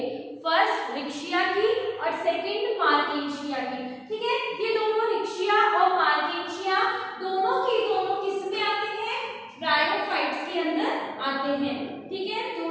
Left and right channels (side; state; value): both; identical; correlation 1.00